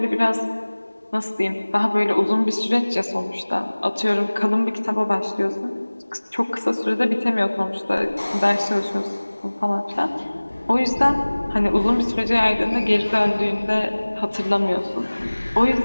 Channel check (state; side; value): inverted; both; correlation -1.00